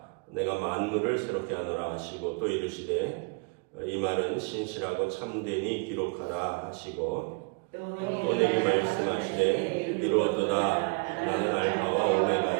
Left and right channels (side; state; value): left; quieter; 33.5 dB